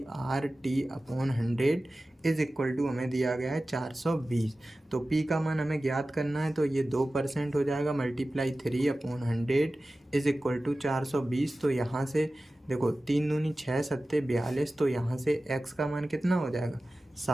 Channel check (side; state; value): both; normal; correlation 0.96